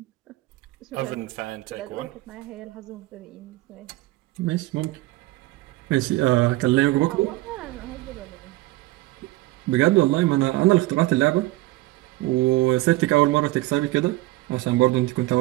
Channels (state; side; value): quieter; left; 18.9 dB